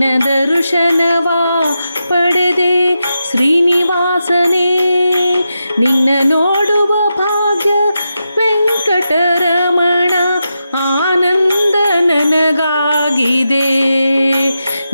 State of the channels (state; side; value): inverted; both; correlation -0.88